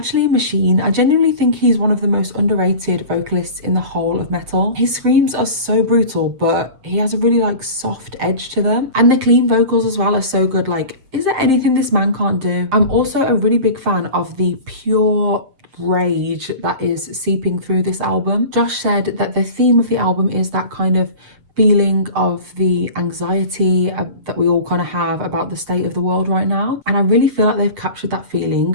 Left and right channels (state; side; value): late; left; 7.7 ms